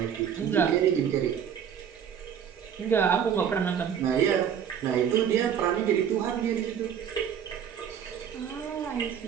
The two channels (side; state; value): left; quieter; 8.4 dB